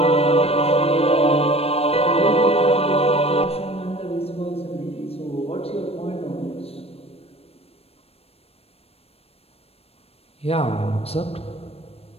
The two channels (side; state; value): right; late; 0.29 ms